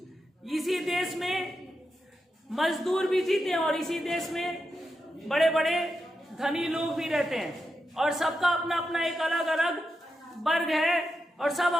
इसी देश में मजदूर भी जीते हैं और इसी देश में बड़े बड़े धनी लोग भी रहते हैं और सबका अपना अपना एक अलग अलग वर्ग है और सब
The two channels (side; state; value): both; normal; correlation 0.87